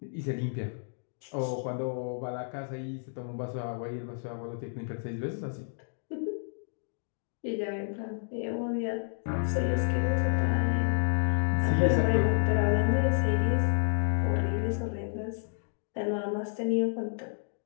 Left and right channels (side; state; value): right; silent; digital silence